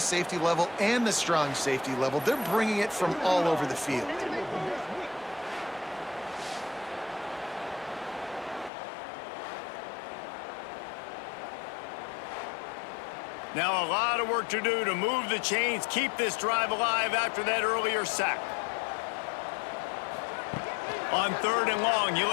level, and the strong safety level. They're bringing it from all over the field. Now a lot of work to do to move the chains, keep this drive alive after that earlier sack. On 3rd and long, you'll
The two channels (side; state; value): right; drops out; at 8.7 s